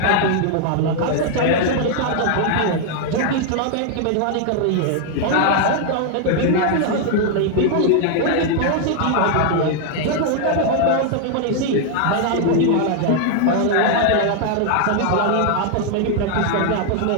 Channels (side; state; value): both; different; correlation 0.00